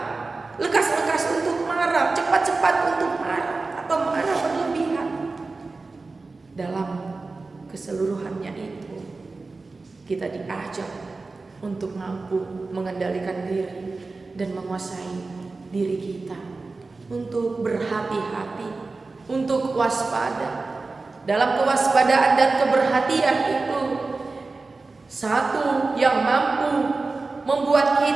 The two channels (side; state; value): left; quieter; 3.7 dB